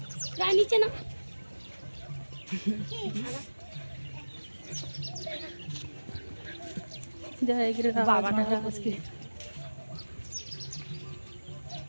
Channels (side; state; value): both; inverted; correlation -1.00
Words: नीचे ना जय गिरिराज महाराज की।